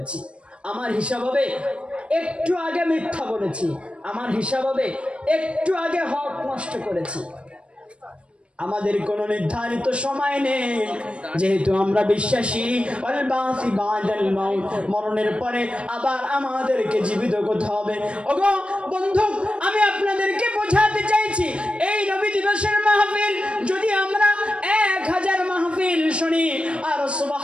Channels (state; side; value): late; left; 0.059 ms